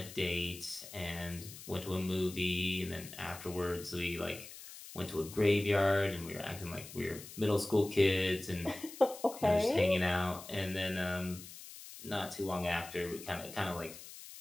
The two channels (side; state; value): left; noise; hiss, 14 dB below the sound